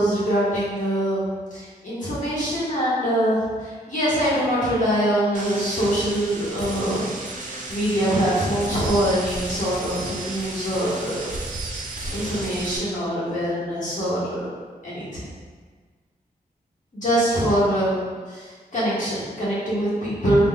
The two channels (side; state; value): both; normal; correlation 0.62